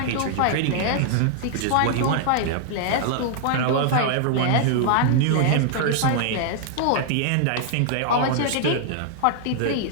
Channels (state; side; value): different; both; correlation -0.01